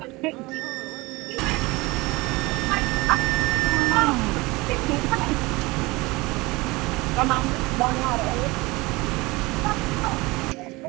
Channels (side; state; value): left; quieter; 23.0 dB